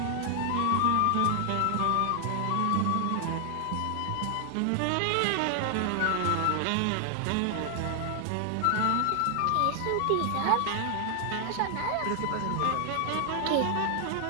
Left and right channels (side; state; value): both; different; correlation 0.00